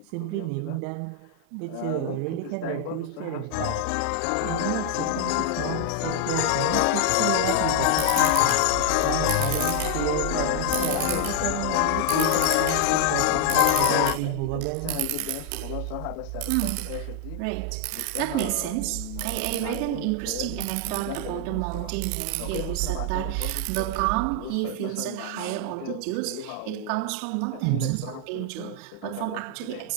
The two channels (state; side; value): different; both; correlation 0.00